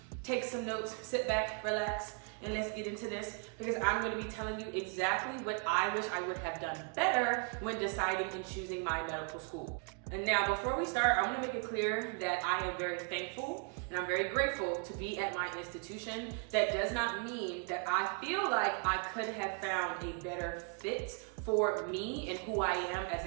take some notes, sit back, relax, and let's get into this, because I'm going to be telling you exactly what I wish I would have done better when deciding and choosing my medical school. And now, before we start, I want to make it clear that I am very thankful and I'm very grateful to be at my institution. That does not mean that I feel like I could have found a better fit for me and who I am as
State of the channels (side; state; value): left; quieter; 37.1 dB